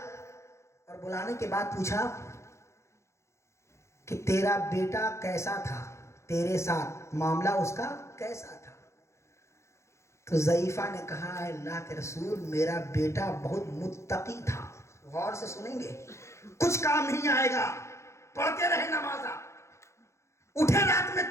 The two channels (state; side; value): late; right; 0.14 ms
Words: اور بلانے کے بعد پوچھا کہ تیرا بیٹا کیسا تھا، تیرے ساتھ معاملہ اس کا کیسا تھا؟ تو ضعیفہ نے کہا، اللہ کے رسول میرا بیٹا بہت متقی تھا. غور سے سنیں گے، کچھ کام نہیں آئے گا، پڑھتے رہے نمازہ، اٹھے رات میں